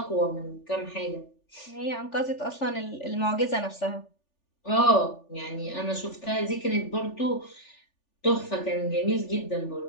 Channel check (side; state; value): right; late; 3.4 ms